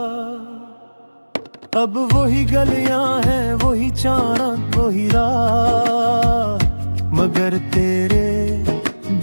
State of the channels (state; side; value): inverted; both; correlation -1.00